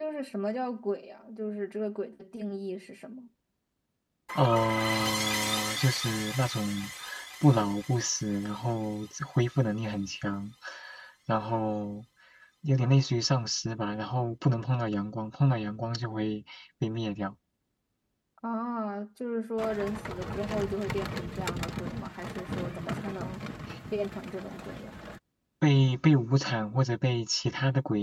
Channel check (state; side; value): identical; both; correlation 1.00